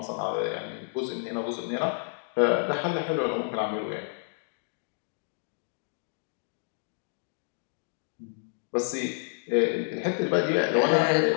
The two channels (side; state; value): right; silent; digital silence